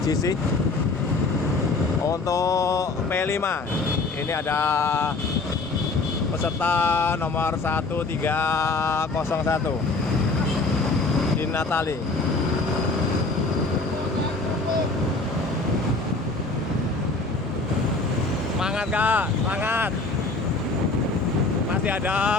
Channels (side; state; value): right; quieter; 3.6 dB